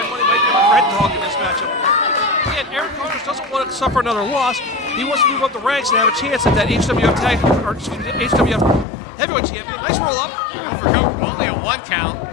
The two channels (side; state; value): right; drops out; at 8.8 s